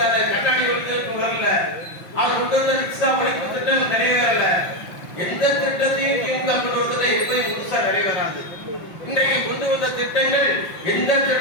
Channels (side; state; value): right; late; 5.6 ms